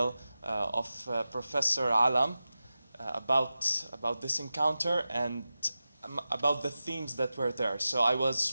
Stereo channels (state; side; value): inverted; both; correlation -0.93